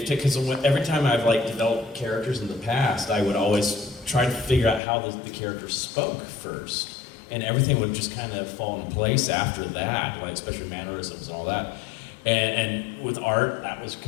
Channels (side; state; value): right; drops out; at 4.8 s